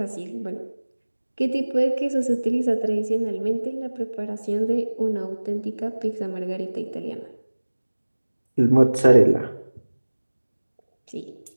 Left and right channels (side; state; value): both; inverted; correlation -1.00